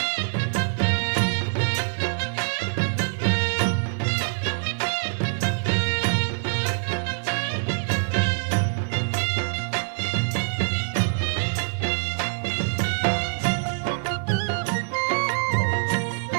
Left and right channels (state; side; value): silent; left; digital silence